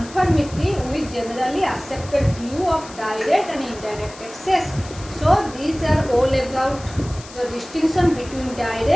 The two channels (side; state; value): left; noise; hiss, 18 dB below the sound